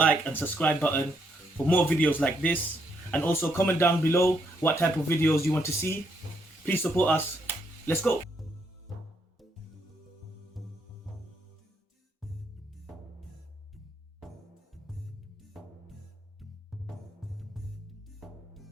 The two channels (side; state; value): both; normal; correlation 0.74